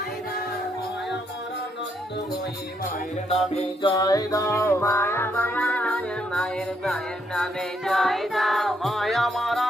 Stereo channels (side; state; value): both; normal; correlation 0.75